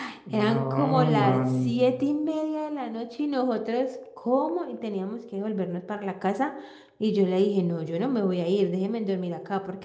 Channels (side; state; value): both; identical; correlation 1.00